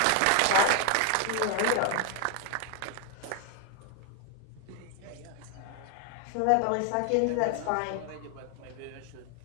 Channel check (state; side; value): different; both; correlation 0.01